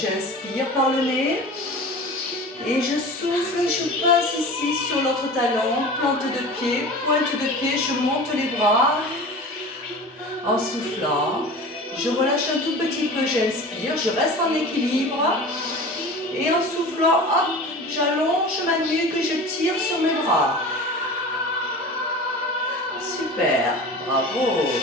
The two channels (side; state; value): both; normal; correlation 0.36